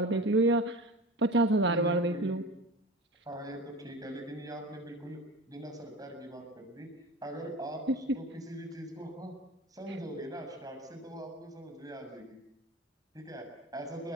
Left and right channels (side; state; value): both; normal; correlation 0.32